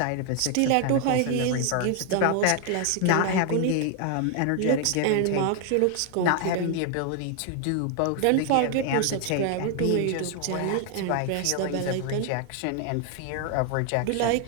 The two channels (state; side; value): different; both; correlation 0.00